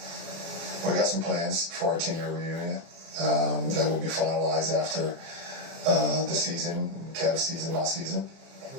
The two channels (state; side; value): late; left; 30 ms